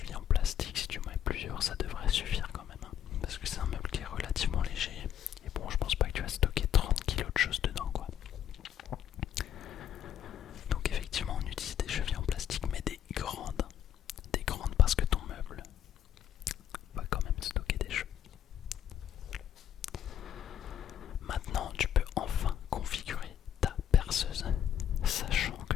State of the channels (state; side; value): quieter; right; 10.0 dB